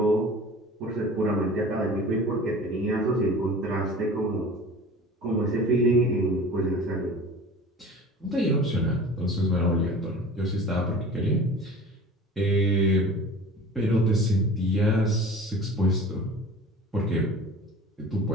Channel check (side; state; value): both; normal; correlation 0.40